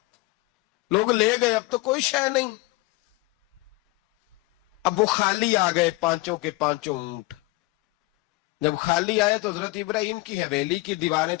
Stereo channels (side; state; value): right; quieter; 21.7 dB